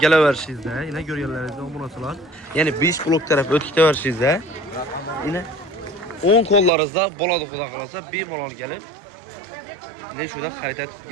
yine ko'rganlaringizda bo'lasalar, ya'ni 5 blok taraf o'tib ketaverishingizda, yine 10 qo'llaringizda bo'ladi xudo xolasa, bemalol kelib ne shunda xarid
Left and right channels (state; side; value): drops out; left; at 6.7 s